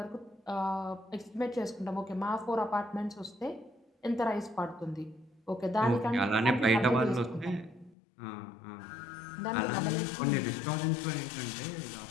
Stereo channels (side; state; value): right; drops out; at 8.0 s